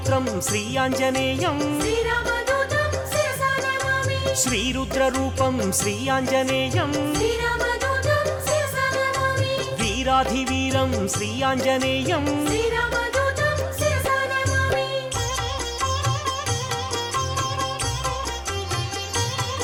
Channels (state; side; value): identical; both; correlation 1.00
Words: శ్రీ ఆంజనేయం శ్రీరామదూతం శిరసా నమామి శ్రీరుద్రరూపం శ్రీ ఆంజనేయం శ్రీరామదూతం శిరసా నమామి వీరాధివీరం శ్రీ ఆంజనేయం శ్రీరామదూతం శిరసా నమామి